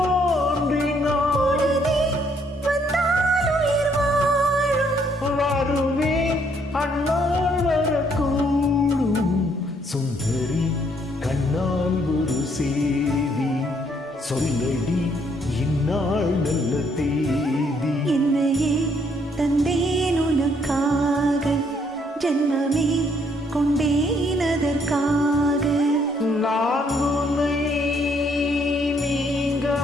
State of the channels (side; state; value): both; normal; correlation 0.69